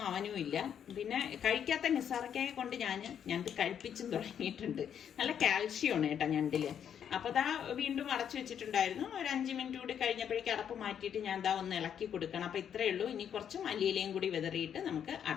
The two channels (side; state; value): right; quieter; 8.7 dB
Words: അവനും ഇല്ല. പിന്നെ കഴിക്കാത്ത നിസാറക്കായെ കൊണ്ട് ഞാൻ ഞണ്ട് കഴിപ്പിച്ചും തുടങ്ങിയിട്ടുണ്ട്. നല്ല കാൽഷ്യമാണ് കേട്ടോ ഞണ്ടില്. അപ്പൊ വീണ്ടും അടച്ചു വെച്ചിട്ടുണ്ടായിരുന്നു. ഒരു 5 മിനിറ്റ് കൂടി കഴിഞ്ഞപ്പോഴേക്കും അടപ്പ് മാറ്റിയിട്ട് ഞാൻ ഒന്ന് ഇളക്കി കൊടുക്കണം. അപ്പൊ ഇത്രയേ ഉള്ളൂ. ഇനി കുറച്ച് മല്ലിയിലയും കൂടി വിതറിയിട്ട് നമുക്ക്